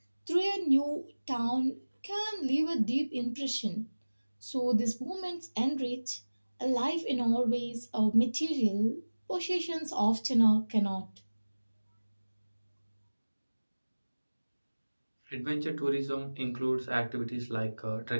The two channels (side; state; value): both; inverted; correlation -1.00